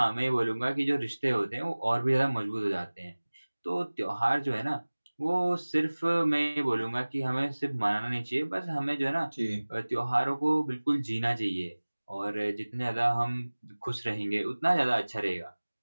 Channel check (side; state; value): both; inverted; correlation -1.00